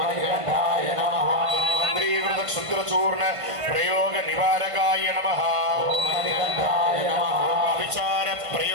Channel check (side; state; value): left; late; 1.5 ms